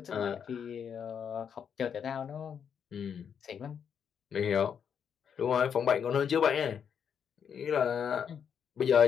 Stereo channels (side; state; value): right; quieter; 7.6 dB